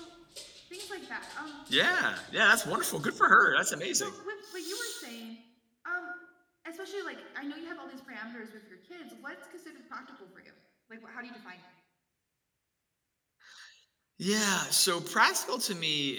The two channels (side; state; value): both; identical; correlation 1.00